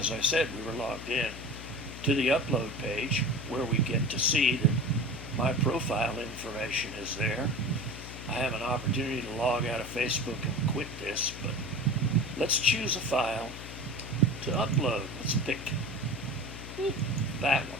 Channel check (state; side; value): noise; left; hum, 11 dB below the sound